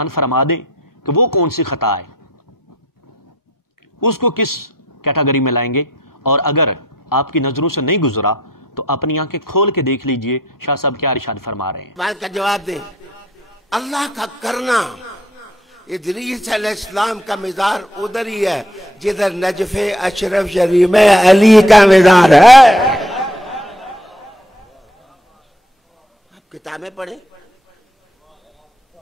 فرما دیں کہ وہ کون سی خطا ہے، اس کو کس کیٹاگری میں لائیں گے، اور اگر آپ کی نظروں سے نہیں گزرا تو اپنی آنکھیں کھول کے دیکھ لیجئے شاہ صاحب کیا ارشاد فرما رہے ہیں۔ بات کا جواب دیں۔ اللہ کا کرنا، ادریس علیہ السلام کا مزار ادھر ہی ہے جدھر نجف اشرف شریف میں علی کا مزار ہے۔ آپ کتابیں پڑھیں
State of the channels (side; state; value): both; normal; correlation 0.66